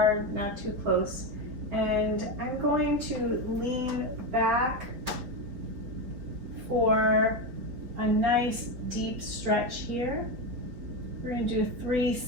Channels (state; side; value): late; left; 4.3 ms